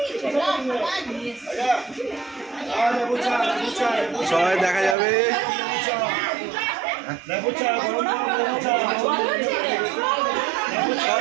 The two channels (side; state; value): left; drops out; at 5.0 s